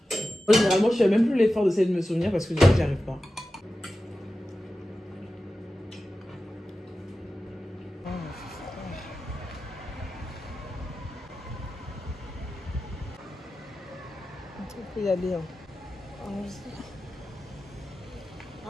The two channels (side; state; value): both; normal; correlation 0.93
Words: Moi, généralement, je fais même plus l'effort d'essayer de me souvenir parce que du coup, j'y arrive pas. On peut y aller. Hein.